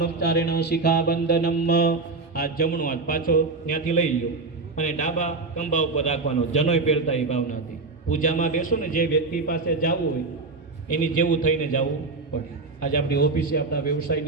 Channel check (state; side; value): quieter; left; 3.8 dB